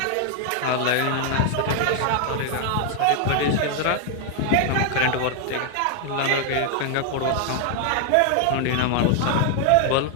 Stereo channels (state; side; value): different; both; correlation 0.00